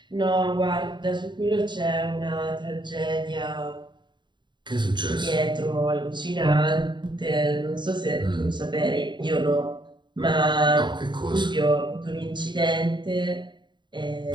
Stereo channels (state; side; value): late; left; 0.22 ms